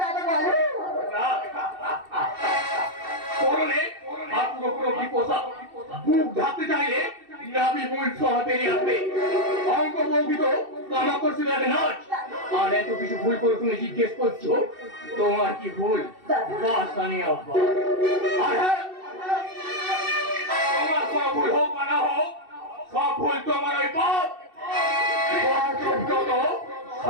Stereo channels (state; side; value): late; left; 2.7 ms